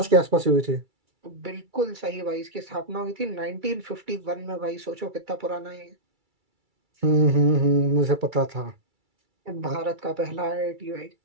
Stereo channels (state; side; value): late; left; 2.3 ms